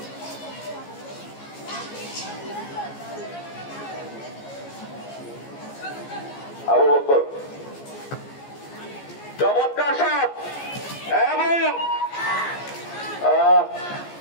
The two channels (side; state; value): right; late; 14 ms